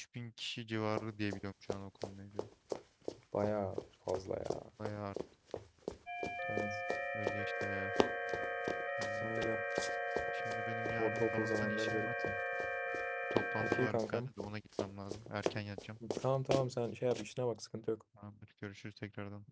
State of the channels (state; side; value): identical; both; correlation 1.00